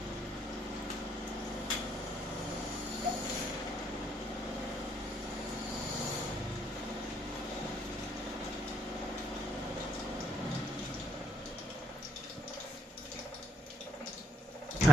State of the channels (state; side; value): normal; both; correlation 0.74